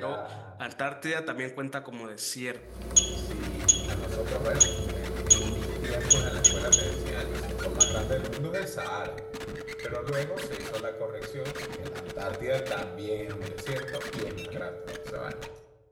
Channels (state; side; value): identical; both; correlation 1.00